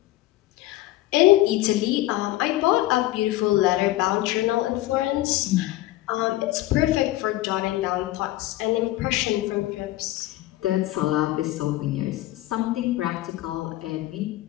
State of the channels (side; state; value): right; quieter; 16.4 dB